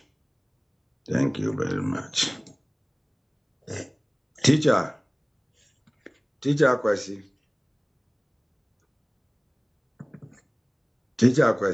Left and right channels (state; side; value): identical; both; correlation 1.00